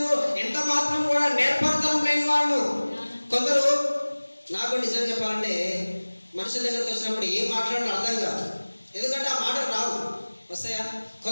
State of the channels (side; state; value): both; inverted; correlation -1.00